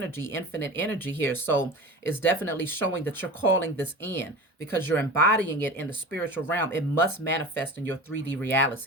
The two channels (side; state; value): both; normal; correlation 0.34